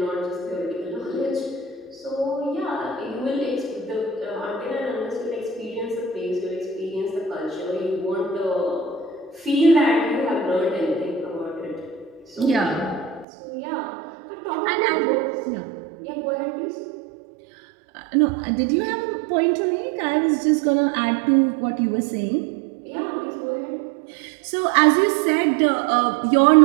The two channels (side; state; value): left; drops out; at 13.2 s